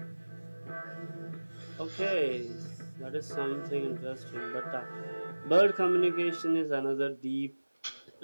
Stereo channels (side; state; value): both; inverted; correlation -1.00